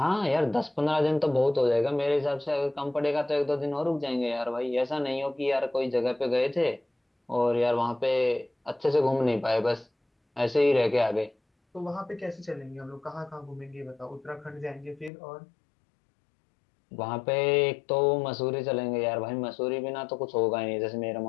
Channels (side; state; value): right; drops out; at 15.1 s